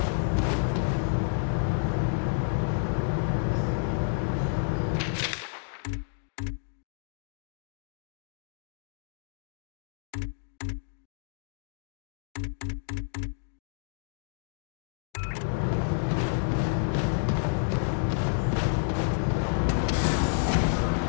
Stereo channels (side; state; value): right; silent; digital silence